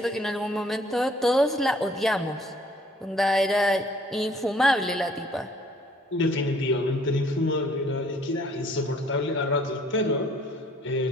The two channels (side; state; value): both; normal; correlation 0.59